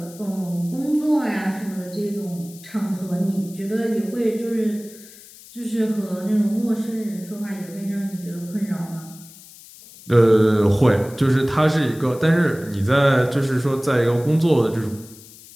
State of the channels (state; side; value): noise; left; hiss, 20 dB below the sound